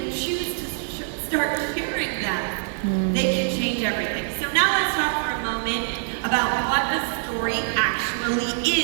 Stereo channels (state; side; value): silent; left; digital silence